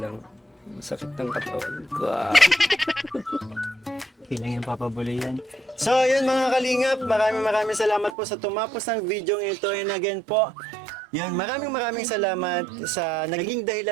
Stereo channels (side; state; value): left; drops out; at 8.2 s